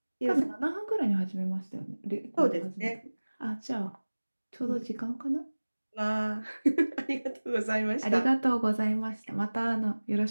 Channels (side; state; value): both; inverted; correlation -1.00